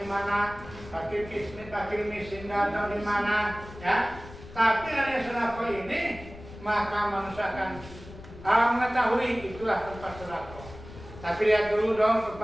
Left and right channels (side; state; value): left; noise; rumble, 16 dB below the sound